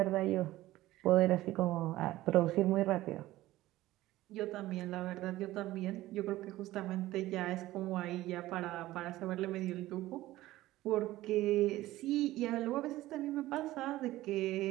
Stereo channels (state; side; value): quieter; left; 16.4 dB